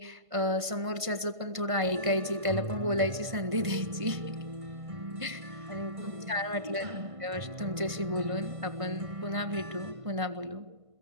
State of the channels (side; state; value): left; late; 1.5 ms